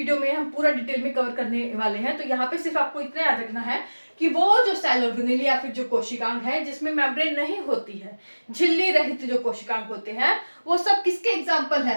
में हम पूरा डिटेल में कवर करने वाले हैं। तो यहाँ पे सिर्फ आपको इतना याद रखना है कि वो जो सेल ऑर्गेनल या फिर जो कोशिकांग है जिसमें मेम्ब्रेन नहीं होती है, झिल्ली रहित जो कोशिकांग होते हैं, वो सब किसके एग्जाम्पल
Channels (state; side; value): inverted; both; correlation -1.00